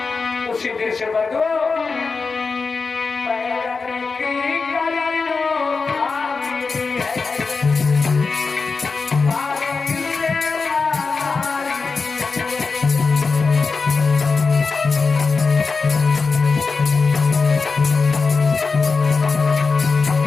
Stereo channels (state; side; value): quieter; right; 4.5 dB